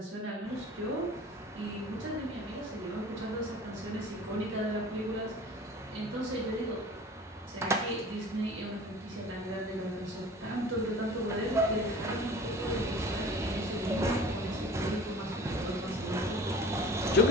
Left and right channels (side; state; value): both; normal; correlation 0.42